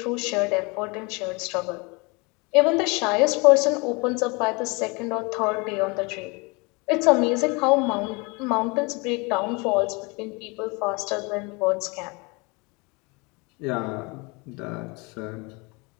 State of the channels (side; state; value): right; quieter; 28.1 dB